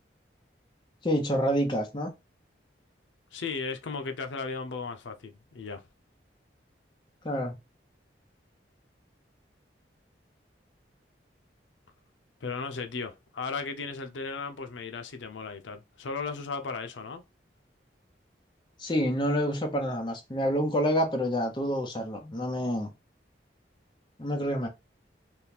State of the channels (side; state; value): both; normal; correlation 0.47